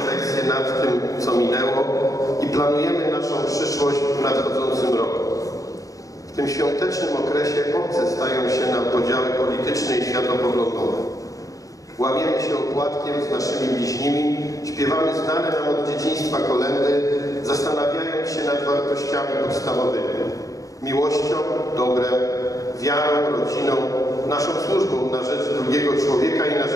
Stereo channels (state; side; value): late; right; 0.16 ms